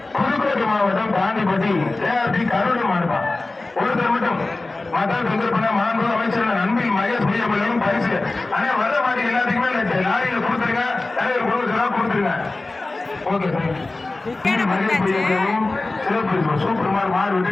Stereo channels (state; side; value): quieter; right; 3.1 dB